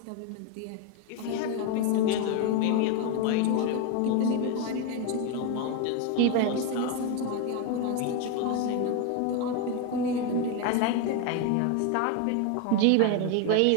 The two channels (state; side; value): different; both; correlation 0.02